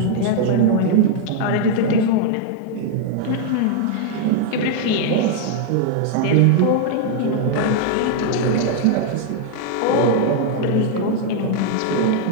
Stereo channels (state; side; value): different; both; correlation 0.00